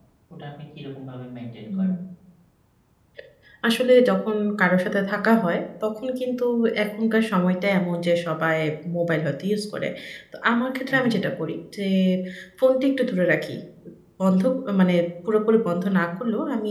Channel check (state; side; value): identical; both; correlation 1.00